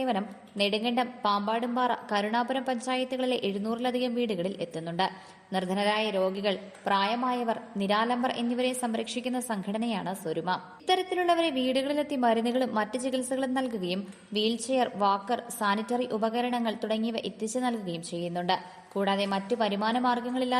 നെടുങ്കണ്ടം, പാമ്പാടുംപാറ, കരുണാപുരം പഞ്ചായത്തുകളിലെ 700-ലധികം വീടുകളിൽ എത്തുന്നുണ്ട്. നിർധനരായ രോഗികൾ, പ്രായമായവർ, നിരാലംബർ എന്നിവരെ സംരക്ഷിക്കുന്ന സംഘടനയാണ് സ്വരുമ. ഇത്തരത്തിലുള്ളവരെ വീടുകളിലെത്തി മരുന്നുകളും മറ്റ് ചികിത്സകളും നൽകുകയും വീൽചെയർ, വാക്കർ, സാനിറ്ററി ഉപകരണങ്ങൾ തുടങ്ങിയവ എത്തിച്ചു നൽകുകയും ചെയ്യുന്നുണ്ട്. കൂടാതെ മറ്റ് വരുമാന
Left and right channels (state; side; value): identical; both; correlation 1.00